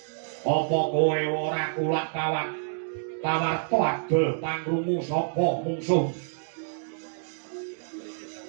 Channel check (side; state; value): left; silent; digital silence